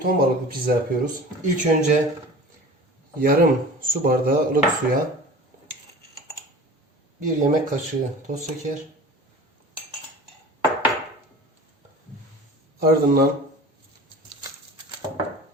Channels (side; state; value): both; normal; correlation 0.39